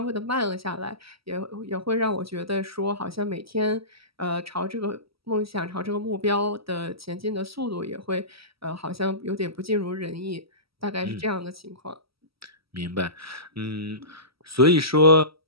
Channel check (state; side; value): late; left; 0.76 ms